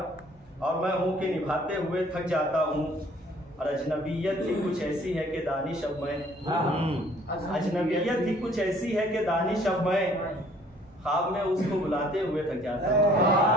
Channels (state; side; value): normal; both; correlation 0.57